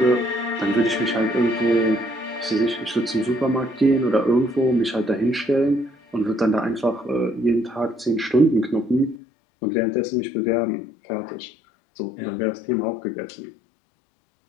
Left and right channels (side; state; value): right; drops out; at 9.2 s